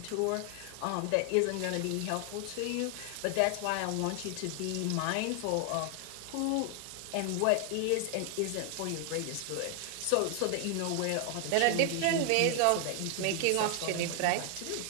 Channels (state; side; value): different; both; correlation 0.00